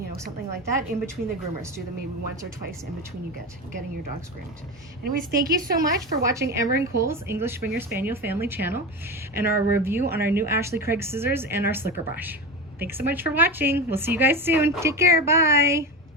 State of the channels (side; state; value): both; normal; correlation 0.23